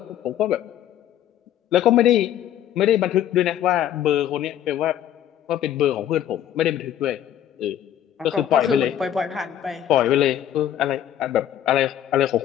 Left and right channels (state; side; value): quieter; right; 10.9 dB